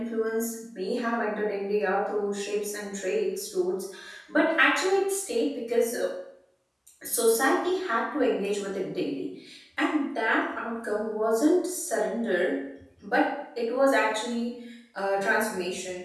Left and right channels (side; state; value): both; identical; correlation 1.00